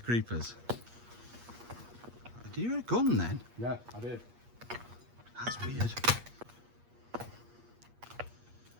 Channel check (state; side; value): late; left; 8.4 ms